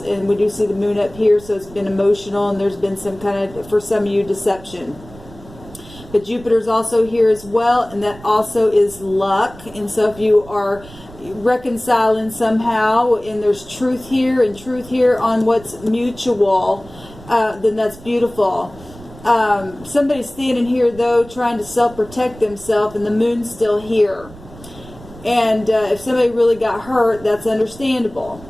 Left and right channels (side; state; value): right; noise; rumble, 19 dB below the sound